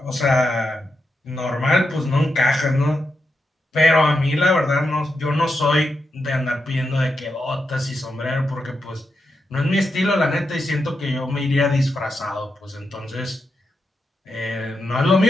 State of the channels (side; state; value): both; normal; correlation 0.86